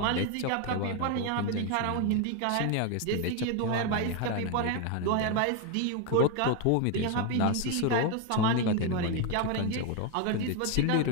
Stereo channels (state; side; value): different; both; correlation 0.01